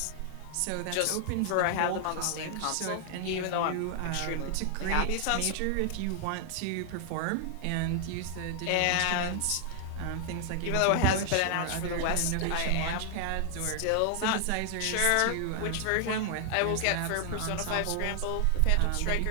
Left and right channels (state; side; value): different; both; correlation 0.00